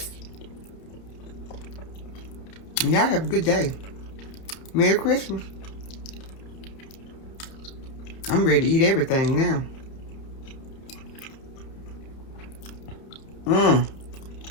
And y'all have a good day. Merry Christmas. I'm ready to eat everything now.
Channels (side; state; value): right; late; 31 ms